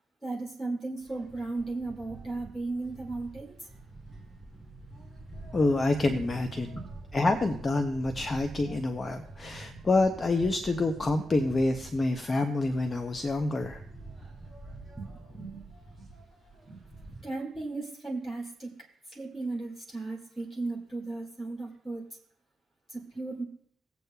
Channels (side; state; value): both; normal; correlation 0.91